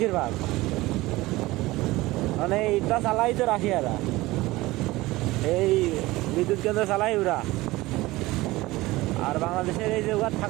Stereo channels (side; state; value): left; quieter; 19.4 dB